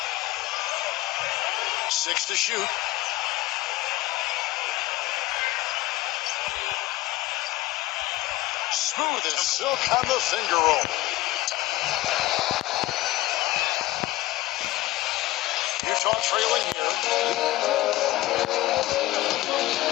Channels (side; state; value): right; quieter; 17.8 dB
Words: 6 to shoot. Smooth as silk on the finger roll. Utah trailing here.